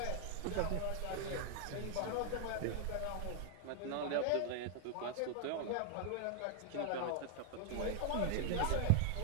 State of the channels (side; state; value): both; different; correlation 0.00